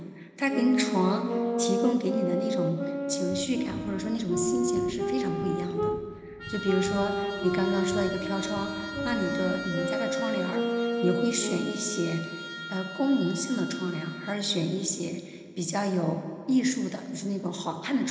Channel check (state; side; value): identical; both; correlation 1.00